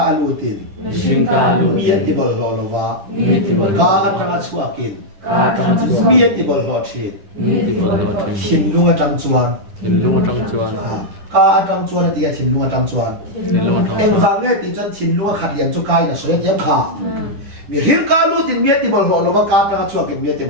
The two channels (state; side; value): late; left; 10 ms